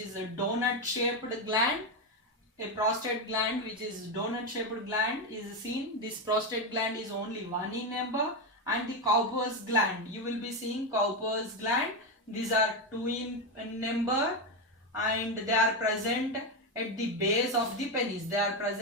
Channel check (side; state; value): both; normal; correlation 0.09